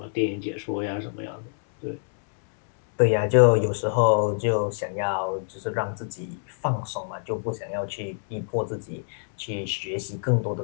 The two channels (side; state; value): right; silent; 61 dB below the other